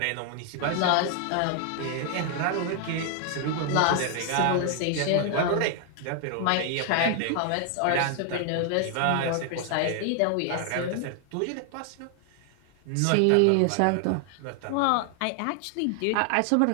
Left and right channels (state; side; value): different; both; correlation 0.00